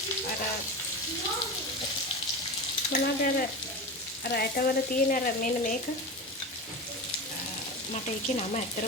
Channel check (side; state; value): both; normal; correlation 0.25